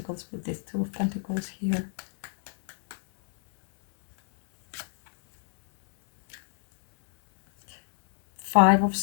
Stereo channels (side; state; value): right; silent; 61 dB below the other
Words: with this Two of Pentacles here. Five of